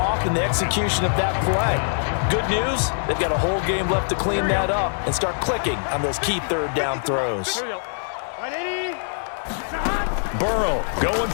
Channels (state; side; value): silent; right; digital silence